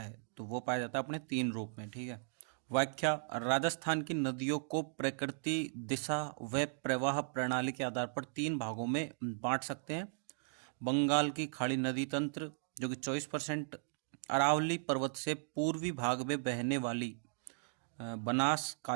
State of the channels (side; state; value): left; silent; digital silence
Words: तो वो पाया जाता है अपने 3 रूप में। ठीक है, व्याख्या। राजस्थान की नदियों को प्रकृति, दिशा व प्रवाह प्रणाली के आधार पर 3 भागों में बांट सकते हैं। बंगाल की खाड़ी नदी तंत्र जो कि 24%, अरावली पर्वत से पूर्वी भाग में बहने वाली बनास,